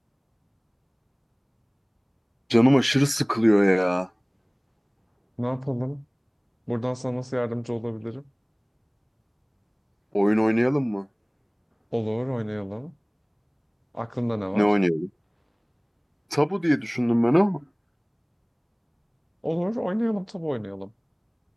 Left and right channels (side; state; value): both; identical; correlation 1.00